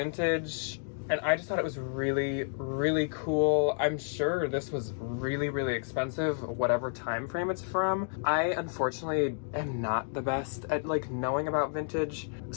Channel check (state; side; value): silent; right; digital silence